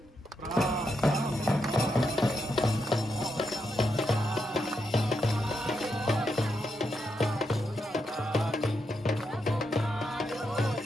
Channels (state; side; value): normal; both; correlation 0.83